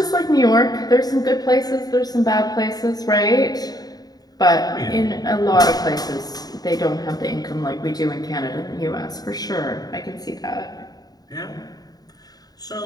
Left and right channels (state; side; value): late; right; 0.19 ms